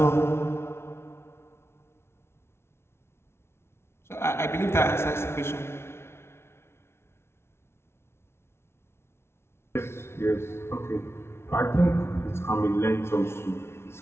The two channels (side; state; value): right; late; 0.12 ms